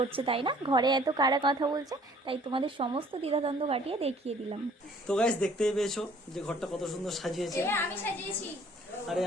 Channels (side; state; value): both; normal; correlation 0.56